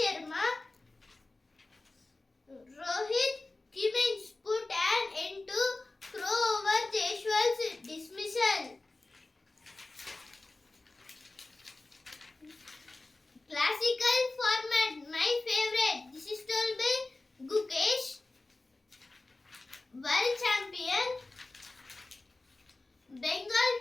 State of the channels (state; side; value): quieter; right; 3.2 dB